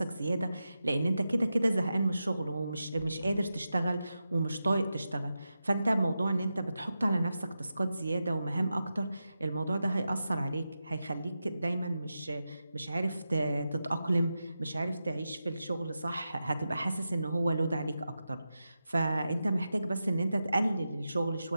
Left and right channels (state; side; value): inverted; both; correlation -0.90